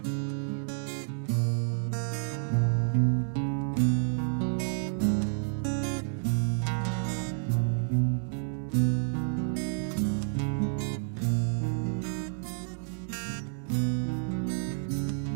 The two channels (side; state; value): left; silent; digital silence